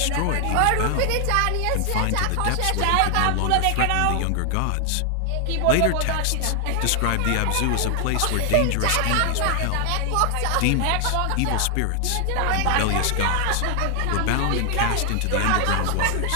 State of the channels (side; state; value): both; different; correlation 0.00